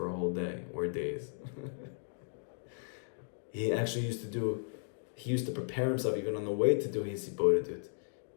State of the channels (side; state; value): right; silent; digital silence